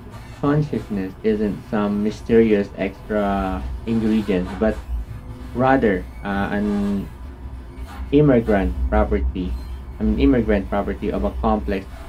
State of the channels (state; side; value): identical; both; correlation 1.00